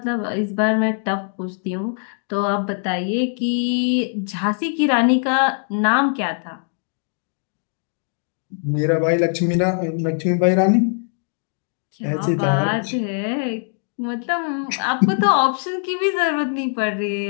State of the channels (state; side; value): silent; right; 58 dB below the other